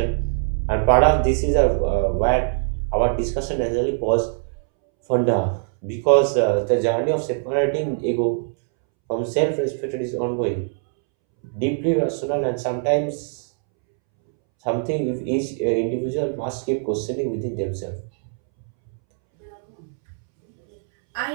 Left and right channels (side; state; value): left; silent; 64 dB below the other